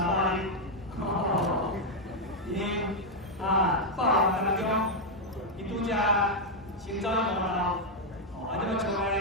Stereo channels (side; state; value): both; normal; correlation 0.00